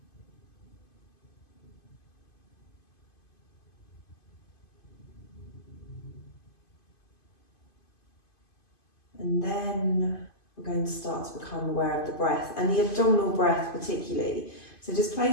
And then we're going to start to become aware of the breath, and the abdominal breath particularly. So just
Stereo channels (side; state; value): right; late; 2.5 ms